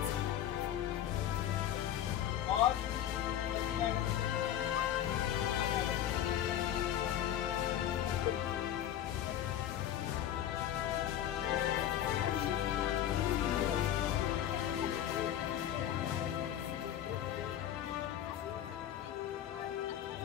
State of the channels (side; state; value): right; quieter; 11.1 dB